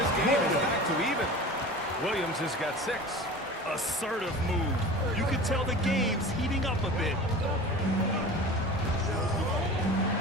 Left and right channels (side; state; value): both; normal; correlation 0.36